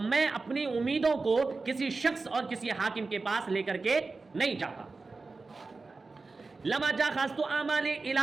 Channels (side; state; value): left; quieter; 3.9 dB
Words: میں اپنی امیدوں کو کسی شخص اور کسی حاکم کے پاس لے کر کے نہیں جاتا۔ لما جاخذت اعمالی الی